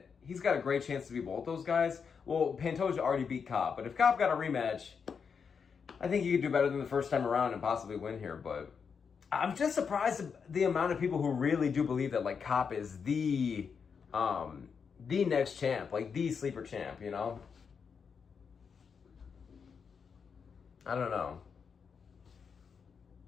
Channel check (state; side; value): quieter; right; 6.2 dB